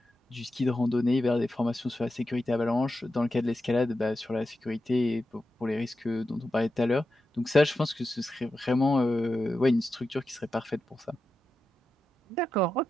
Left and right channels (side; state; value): both; normal; correlation 0.90